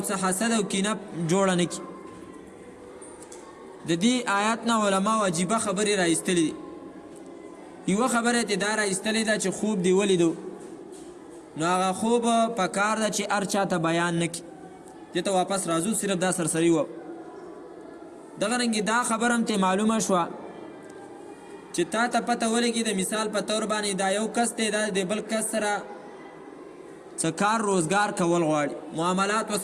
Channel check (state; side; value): identical; both; correlation 1.00